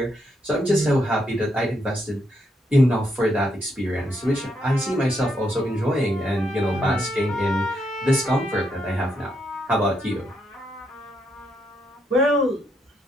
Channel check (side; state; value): both; normal; correlation 0.77